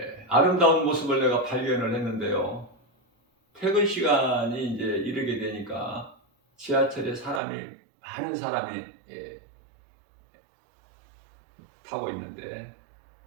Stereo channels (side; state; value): left; drops out; at 7.4 s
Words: 아름다운 모습을 내가 발견을 했는데요. 퇴근 시간이 이제 이르게 되니까 지하철에 많은 사람이 타고 있는데